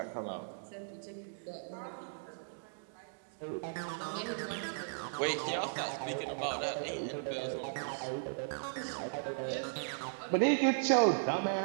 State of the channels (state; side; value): silent; left; digital silence